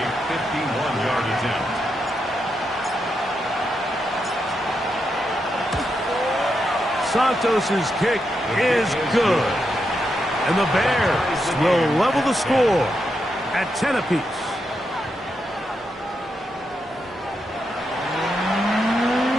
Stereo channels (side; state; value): both; normal; correlation 0.84